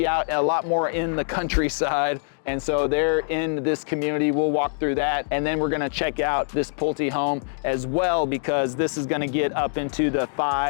out a lot more in the countryside. And so they're in this community. We'll walk through that. And then we're gonna check out this Pulte home as well, because this is gonna get up into the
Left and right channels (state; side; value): silent; right; digital silence